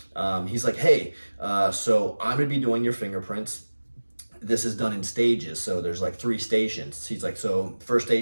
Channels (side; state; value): both; inverted; correlation -1.00